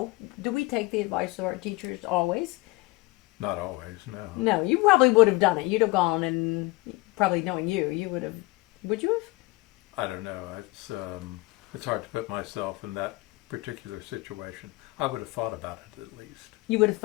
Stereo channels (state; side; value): quieter; right; 22.4 dB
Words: we take the advice of our teachers always? Not always, no. No, you probably would have done it. You'd have gone and, probably knowing you would have, would you have? I don't know. It's hard to put myself in that particular situation. I would have thought about it at least. You would have